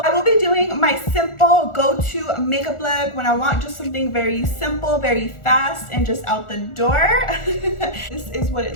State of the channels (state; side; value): late; right; 1.4 ms